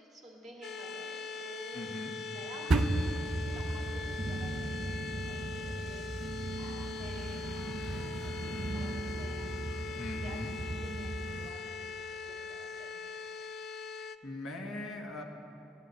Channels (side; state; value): both; normal; correlation 0.77